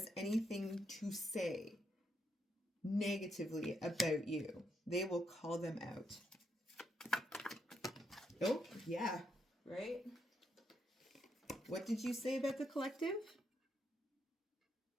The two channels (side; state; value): both; normal; correlation 0.79